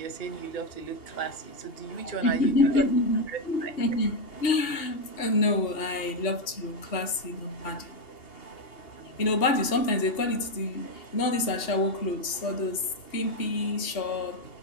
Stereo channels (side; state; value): right; late; 2.8 ms